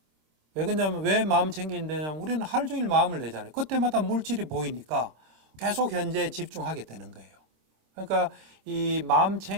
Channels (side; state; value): left; late; 26 ms